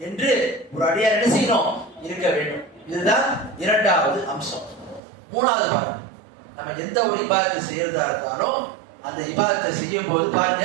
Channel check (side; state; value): left; drops out; at 5.0 s